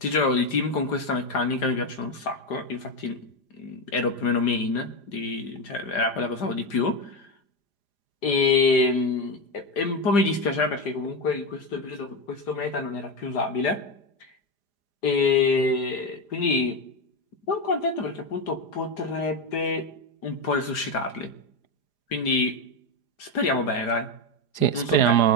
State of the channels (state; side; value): late; right; 5.0 ms